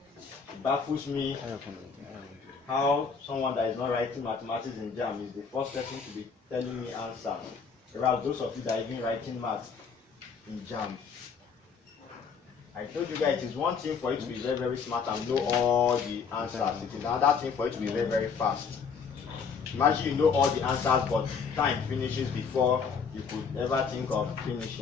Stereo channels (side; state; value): right; quieter; 5.9 dB